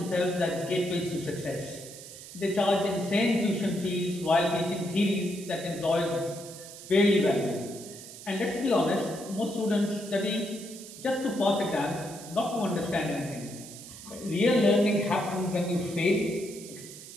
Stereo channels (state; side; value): noise; right; hiss, 14 dB below the sound